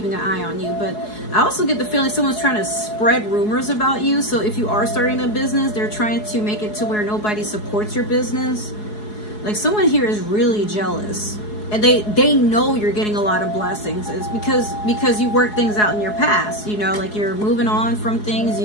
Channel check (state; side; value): late; right; 4.7 ms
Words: an eye on you. But I also get the feeling someone's trying to spread rumors about you. So if you are starting a business, they're trying to make it to where nobody supports your business. Like, someone here is really jealous, and they know you're getting a lot of blessings. It's because you work things out in your past, you know, like you're moving on from things,